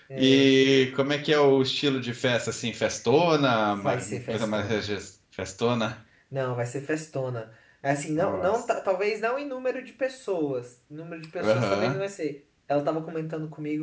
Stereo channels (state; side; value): identical; both; correlation 1.00